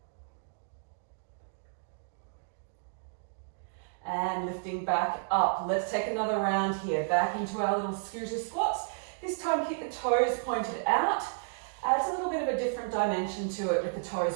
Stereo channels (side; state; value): left; silent; digital silence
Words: And lifting back up. Let's take another round here. Back into our little scooter squats. This time keep the toes pointed out. Adds a little bit of a different dimension to it with the